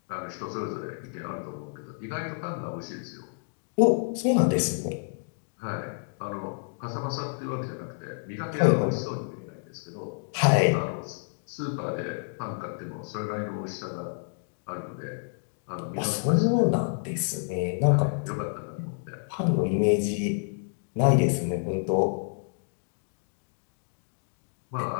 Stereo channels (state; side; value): silent; right; digital silence